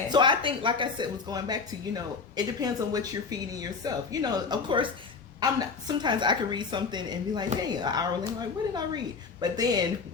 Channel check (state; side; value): quieter; right; 4.9 dB